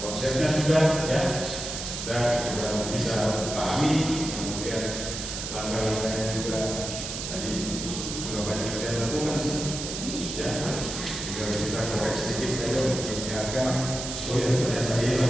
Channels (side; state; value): right; noise; hiss, 6 dB below the sound